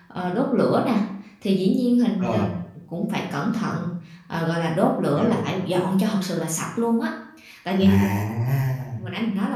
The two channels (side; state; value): both; identical; correlation 1.00